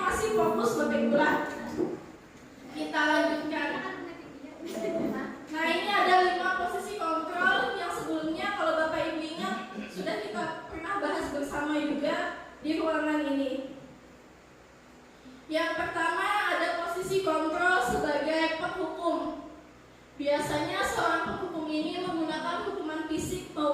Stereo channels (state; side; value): identical; both; correlation 1.00